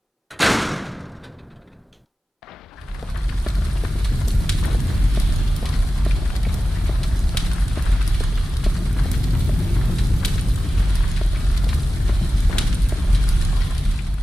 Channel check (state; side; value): normal; both; correlation 0.94